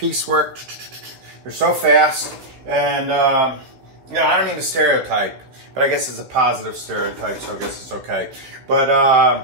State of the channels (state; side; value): late; left; 15 ms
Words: They're so fast. And you know, I don't mean to stereotype, but I guess it's a positive stereotype, so I guess it's okay. But